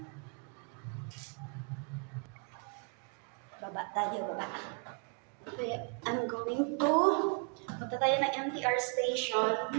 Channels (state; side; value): quieter; left; 36.9 dB